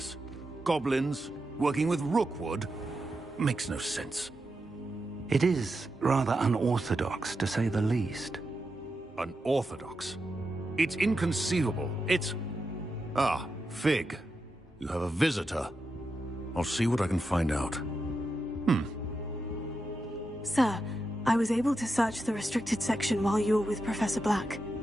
Goblins, working with Rookwood? Makes no sense. It is rather unorthodox, to say the least. Unorthodox? It's inconceivable. It's... Ah, Fig. You have a visitor. I'll see what I can find out. Sir, I was able to search the restricted section while you were with Professor Black.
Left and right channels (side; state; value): both; normal; correlation 0.87